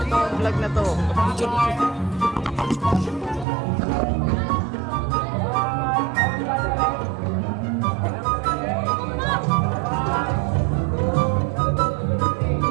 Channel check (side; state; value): left; drops out; at 3.5 s